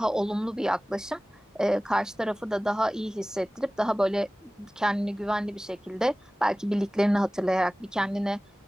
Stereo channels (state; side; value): normal; both; correlation 0.98